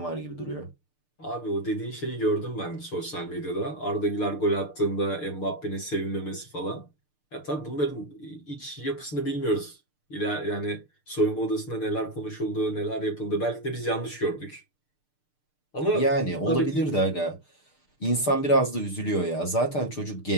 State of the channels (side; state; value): right; late; 6.7 ms